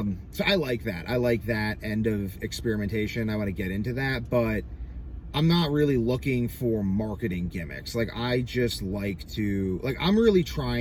so I like that. I like that end of experimentation. I want to get into that, but I'm not really looking for marketing gimmicks. Like, I just like to, like, I'm really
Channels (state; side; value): identical; both; correlation 1.00